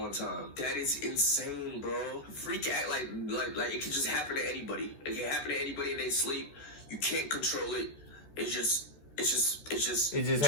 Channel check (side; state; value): right; late; 14 ms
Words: time. That is insane, bro. Freak act like it could just happen to anybody. It can happen to anybody in their sleep. You can't control it. It just happens.